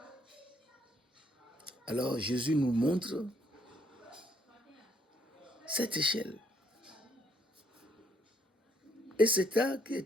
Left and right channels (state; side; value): normal; both; correlation 0.69